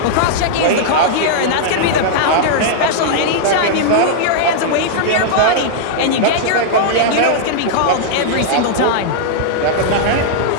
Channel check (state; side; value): different; both; correlation -0.02